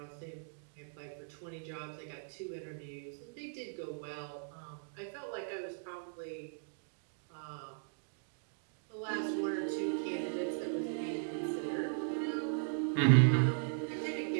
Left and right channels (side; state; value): left; silent; digital silence